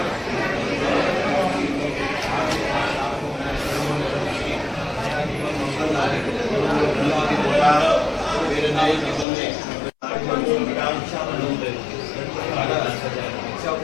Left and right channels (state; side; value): drops out; right; at 9.2 s